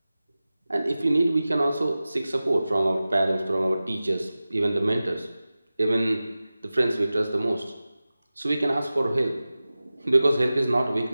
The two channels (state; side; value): inverted; both; correlation -0.96